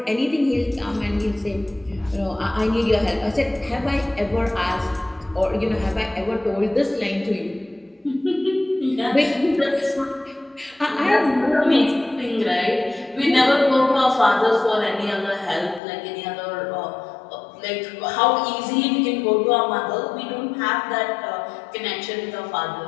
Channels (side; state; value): right; drops out; at 15.8 s